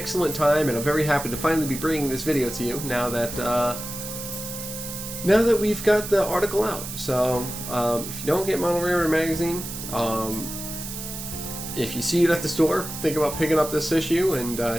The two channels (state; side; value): noise; right; hiss, 8 dB below the sound